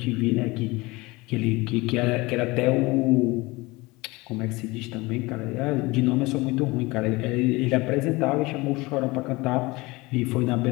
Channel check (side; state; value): right; quieter; 22.7 dB